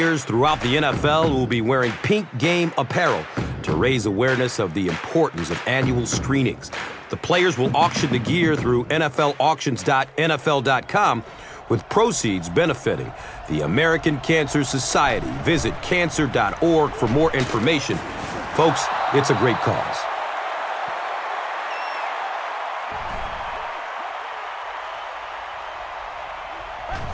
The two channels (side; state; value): both; identical; correlation 1.00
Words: throughout the NFL will be wearing pink game apparel to raise awareness of the importance of annual screenings. The players will auction the gear through NFLauctions.nfl.com, with proceeds benefiting the American Cancer Society. Visit cancer.org for more information. Folks, it's a great cause.